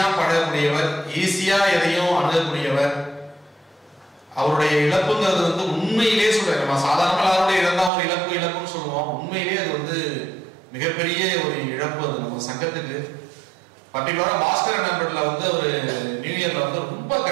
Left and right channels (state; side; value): drops out; left; at 7.9 s